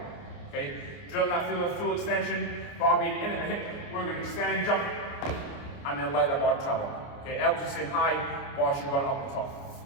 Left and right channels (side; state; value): right; late; 29 ms